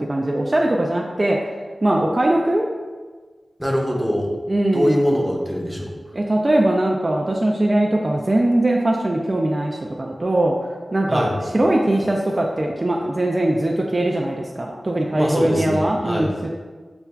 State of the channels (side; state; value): both; normal; correlation 0.97